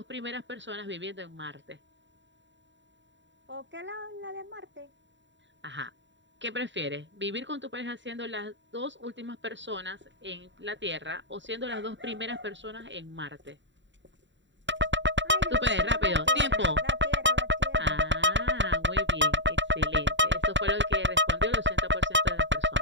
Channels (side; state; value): left; late; 0.54 ms